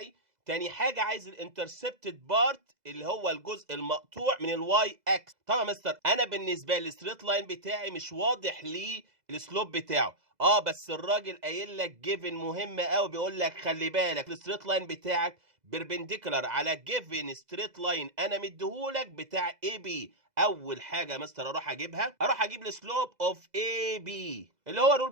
تاني حاجه عايز الانترسبتد بارت اللي هو الجزء المقطوع من الواي اكس. طبعا يا مستر انا بالنسبه للستريت لاين بتاعي مش واضح لي السلوب بتاعه، بس الراجل قايل لك جيفن مهمه قوي، بيقول لك خلي بالك الستريت لاين بتاعك بيربنديكولار على جيفن ستريت لاين انا مديهولك بتاع اي بي. اول حاجه يا مستر اروح اجيب السلوب اوف اي بي اللي هو الرول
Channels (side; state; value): left; late; 2.0 ms